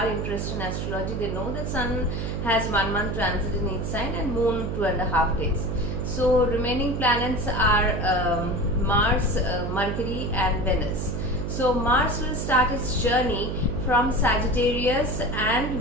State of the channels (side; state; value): right; noise; hum, 3 dB below the sound